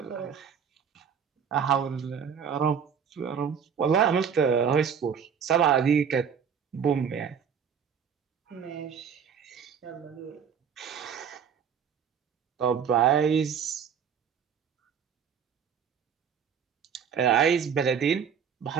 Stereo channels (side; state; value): left; quieter; 7.3 dB